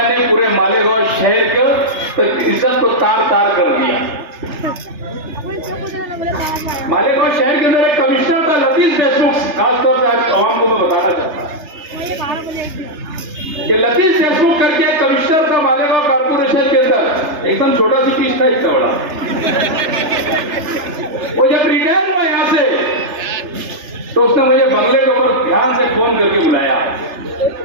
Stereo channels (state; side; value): late; left; 3.3 ms